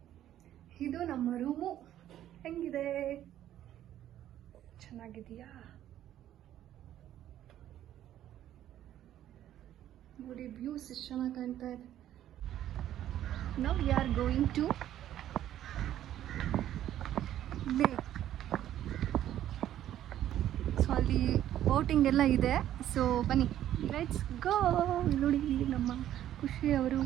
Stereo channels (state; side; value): quieter; left; 12.0 dB